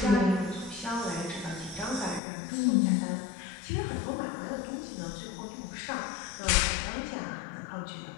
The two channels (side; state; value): right; drops out; at 2.2 s